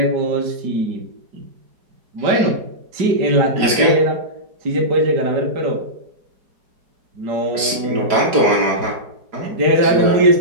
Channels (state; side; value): late; left; 4.8 ms